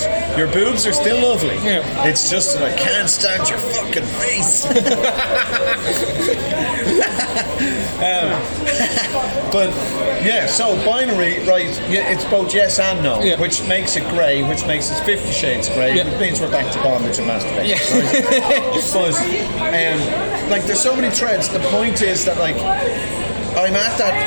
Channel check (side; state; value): both; inverted; correlation -1.00